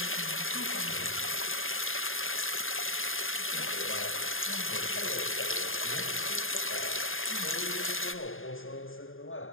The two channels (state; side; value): late; right; 0.59 ms